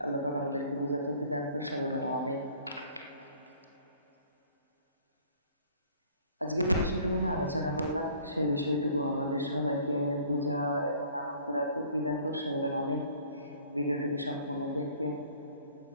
আল্লাহ পাক আমাদেরকে বুঝাতে দান করে সবাই আমিন। আজকে যে বিষয়টুকু নিয়ে আলোচনা করলাম সেই বিষয়টুকু আমাদের সবাইকে বোঝার এবং আমল করার তৌফিক দান করুন। বলেন আমিন। ভিডিওটিকে সম্পূর্ণ দেখবেন,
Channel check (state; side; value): inverted; both; correlation -0.53